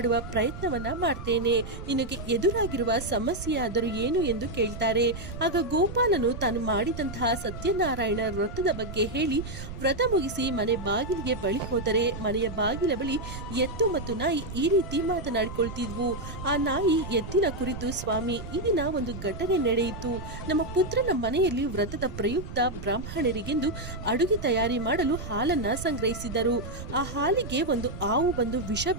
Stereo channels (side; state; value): right; noise; rumble, 10 dB below the sound